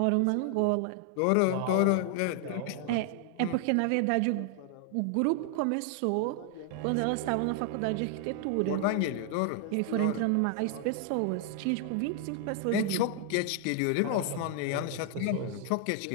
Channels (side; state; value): both; different; correlation 0.00